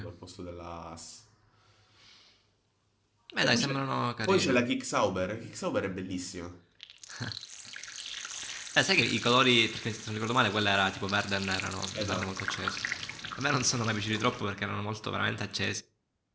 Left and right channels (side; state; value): both; identical; correlation 1.00